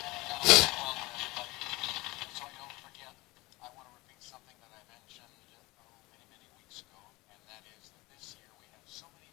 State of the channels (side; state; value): right; quieter; 22.0 dB